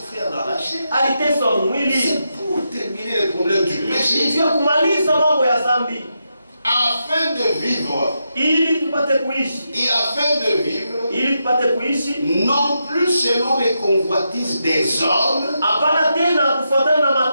dans la chair. Aliteswa mwili C'est pour terminer le problème du péché. ili kumaliza mambo ya dhambi, Afin de vivre, ili tupate kuishi, et afin de vivre, ili tupate kuishi non plus selon les convoitises des hommes. hapana tena kufuatana na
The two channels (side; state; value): both; inverted; correlation -0.84